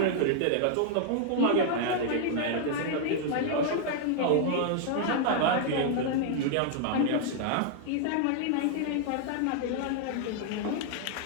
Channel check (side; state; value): both; different; correlation -0.01